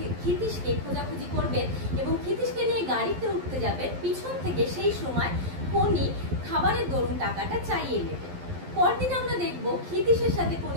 ক্ষিতিশকে খোঁজাখুঁজি করবে এবং ক্ষিতিশকে নিয়ে গাড়িতে উঠতে যাবে। পিছন থেকে সেই সময় পনি খাবারের দরুন টাকাটা চাইয়ে নেবে। পরদিন আমরা দেখব ক্ষিতিশের সাথে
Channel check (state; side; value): late; left; 11 ms